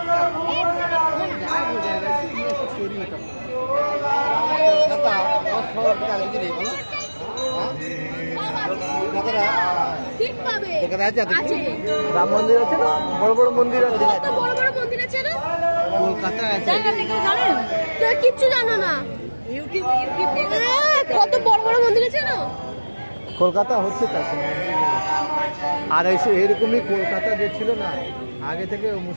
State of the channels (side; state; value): both; inverted; correlation -1.00